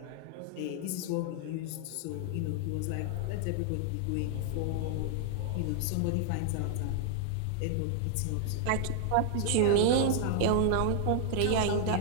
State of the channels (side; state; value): both; different; correlation 0.00